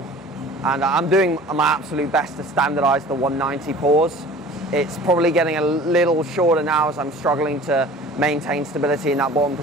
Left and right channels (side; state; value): both; normal; correlation 0.44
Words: And I'm doing my absolute best to standardize the 190 pause. It's probably getting a little shorter now as I'm struggling to maintain stability in that bottom